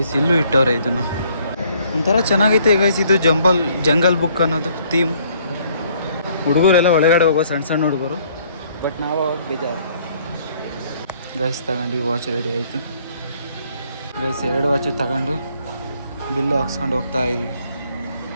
ಇಲ್ಲೂ ಇಟ್ಟವ್ರೆ ಇದನ್ನು ಒಂಥರ ಚೆನ್ನಾಗೈತೆ ಗೈಸ್ ಇದು ಜಂಗಲ್ ಬುಕ್ ಅನ್ನೋದು ಥೀಮ್ ಹುಡುಗರೆಲ್ಲ ಒಳಗಡೆ ಹೋಗೋ ಸಣ್ಣ ಹುಡುಗರು ಬಟ್ ನಾವು ಅವಾಗ ಬೇಜಾರು ಗೈಸ್ ತಗೊಂಡು ವಾಚ್ ರೆಡಿ ಆಯಿತು ಗೈಸ್ 2 ವಾಚು ತಗೊಂಡು ಬಿಲ್ಲು ಹಾಕ್ಸ್ಕೊಂಡು ಹೋಗ್ತಾ ಇದ್ವಿ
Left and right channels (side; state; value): both; inverted; correlation -0.63